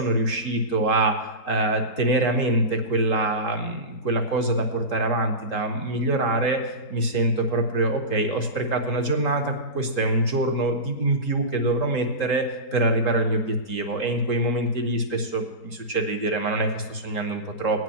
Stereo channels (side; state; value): right; late; 3.8 ms